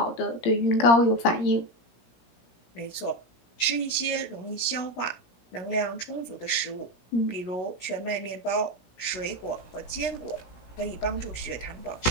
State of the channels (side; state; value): right; late; 16 ms